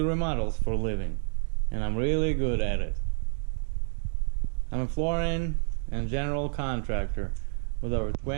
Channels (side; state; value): left; silent; 59 dB below the other